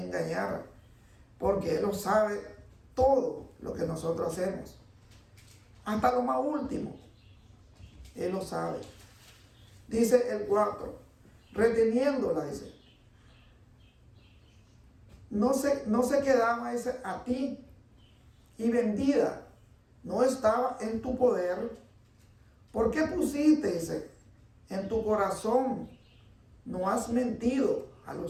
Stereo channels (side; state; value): both; identical; correlation 1.00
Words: porque Él lo sabe todo lo que nosotros hacemos. Hasta lo más último. Él lo sabe. Dice el 4. Reteniéndola, dice. No se quedaba, dice, a ti. Y vendida. No estaba en tu poder. ¿Por qué pusiste, dice, en tu corazón? No has mentido a